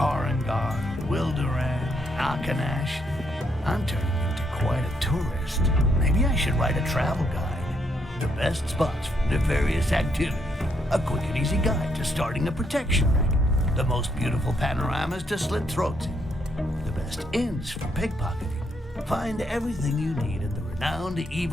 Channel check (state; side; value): normal; both; correlation 0.75